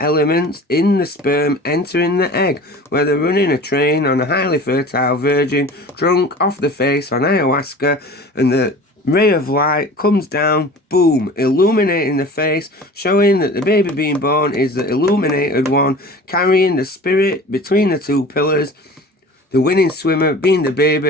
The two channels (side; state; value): both; normal; correlation 0.40